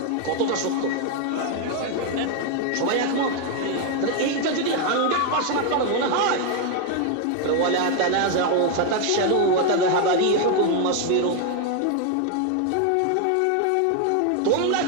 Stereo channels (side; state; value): both; different; correlation 0.01